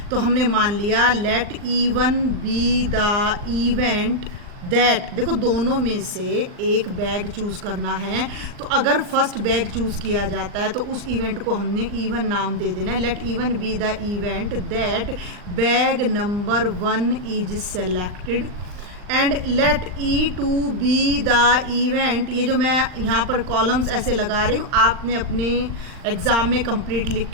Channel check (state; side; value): late; left; 39 ms